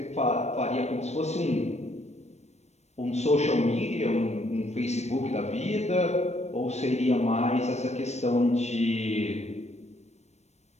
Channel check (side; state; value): right; late; 0.32 ms